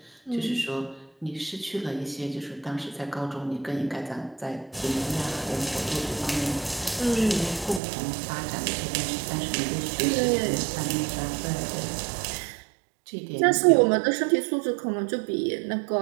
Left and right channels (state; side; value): drops out; left; at 7.8 s